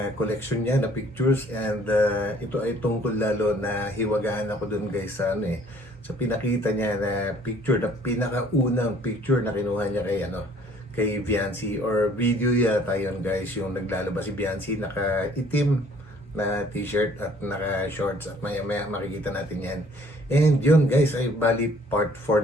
collection niya na pictures. And ito ay tungkol lalo na hiwagaan ako dun guys sa sa pinakita niya na picture, na pinakaunang picture na kinuha niya kay Viancy, or video yata yun guys, yung naglalabas si Viancy naka-itim na t-shirt at naka-shorts, at maya-maya makikita natin yan. And yun guys, ay bali part 4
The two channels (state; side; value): normal; both; correlation 0.57